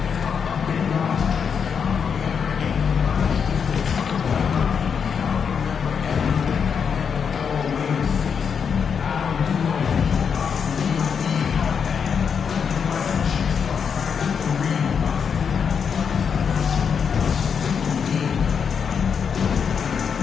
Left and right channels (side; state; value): right; quieter; 6.7 dB